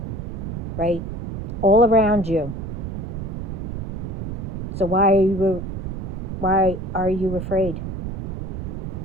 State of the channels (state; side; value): noise; right; rumble, 5 dB below the sound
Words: right? all around you. So why are you afraid?